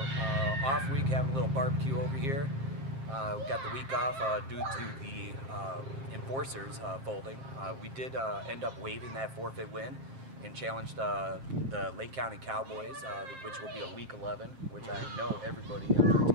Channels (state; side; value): late; left; 7.5 ms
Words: off week, having a little barbecue over here. We got the week off due to the enforcers folding. We did end up waiving that forfeit win and challenged the Lake County Cowboys, which will be a week 11, which I know everybody on our